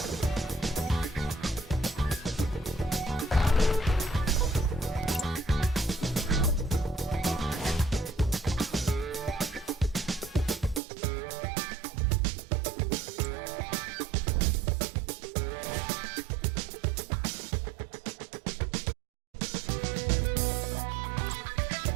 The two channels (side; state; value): left; drops out; at 10.8 s